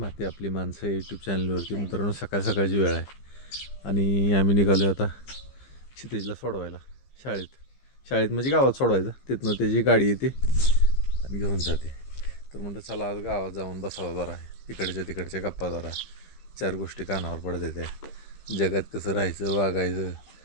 आपली माणसं यूट्यूब चॅनलवरती. मित्रांनो, सकाळ सकाळची वेळ आहे आणि आम्ही निघालो आता क्षितिजला सोडवायला शाळेत म्हणजे गावात सोडवायचं. तिथनं त्याची गाडी येते आणि घेऊन जाते. तर म्हणतं चला आज गावात जाऊन बसावं जरा, तिकडच्या गप्पा जरा, चार गोष्टी कानावर पडत त्या जगात कसं राहायचं वागायचं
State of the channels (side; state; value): right; late; 15 ms